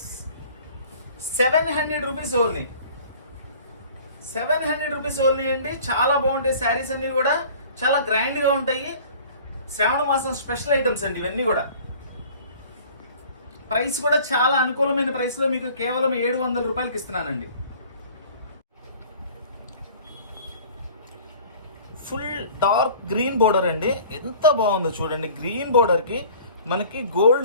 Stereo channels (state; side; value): inverted; both; correlation -0.48